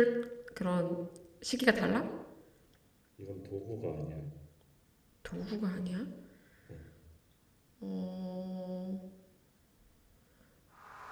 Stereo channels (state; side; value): identical; both; correlation 1.00